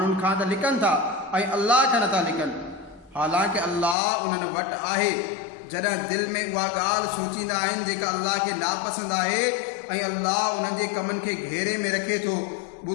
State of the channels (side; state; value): right; drops out; at 4.0 s